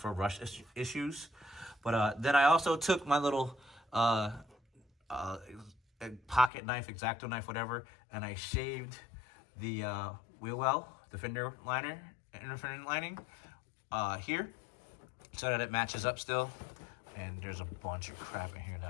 rust issues. But then I also took my little pocket knife, X-Acto knife, whatever, and I shaved the wheel well, the fender liner, inner fender lining here, so that it matches up still. And there's a bunch of crap in here that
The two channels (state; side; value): drops out; right; at 6.5 s